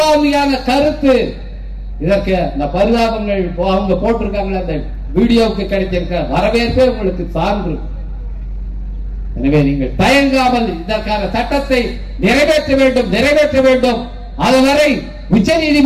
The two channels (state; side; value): identical; both; correlation 1.00